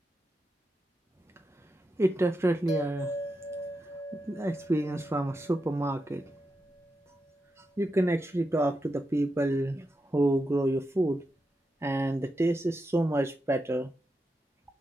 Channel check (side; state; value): both; normal; correlation 0.87